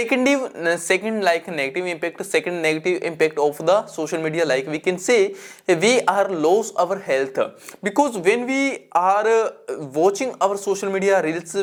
negative impact, second negative impact of the social media, we can say we are lose our health, because when we are watching our social media reels,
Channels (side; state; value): both; identical; correlation 1.00